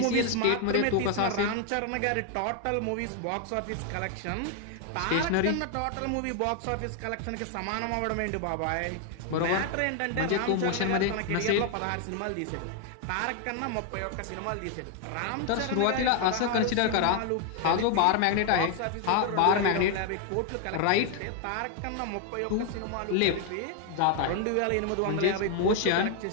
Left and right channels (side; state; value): both; different; correlation 0.00